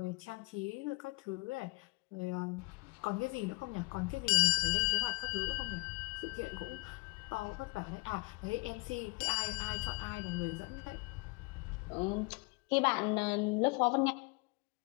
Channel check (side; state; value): right; quieter; 28.9 dB